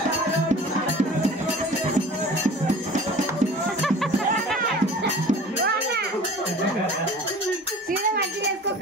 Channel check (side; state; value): both; normal; correlation 0.42